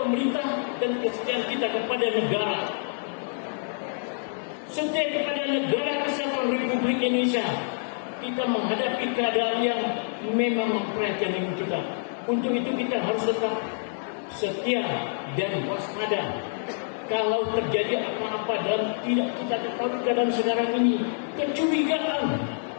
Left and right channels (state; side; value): silent; right; 60 dB below the other